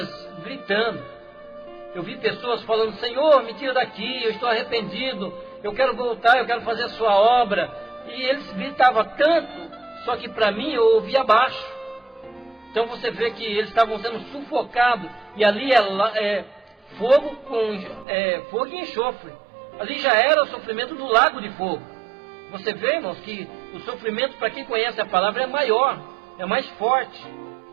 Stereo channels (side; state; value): left; drops out; at 18.1 s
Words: gritando. Eu vi pessoas falando, Senhor, me tira daqui, eu estou arrependido, eu quero voltar, eu quero fazer a sua obra. E eles gritavam tanto, só que para mim eu ouvia abaixo. Então você vê que eles estavam sendo sufocados, e ali é fogo e enxofre. Ali já era o sofrimento do lago de fogo. Você vê, irmãos, que o sofrimento, para quem conhece a palavra, é maior, é mais forte.